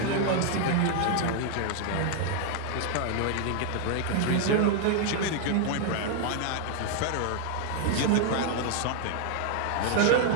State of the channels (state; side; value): different; both; correlation 0.00